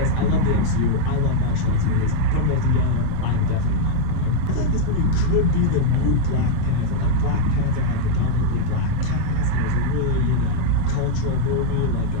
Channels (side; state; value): both; different; correlation 0.00